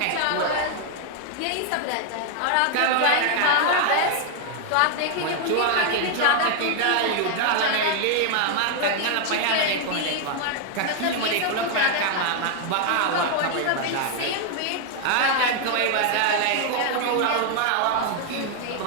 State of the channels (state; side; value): different; both; correlation 0.00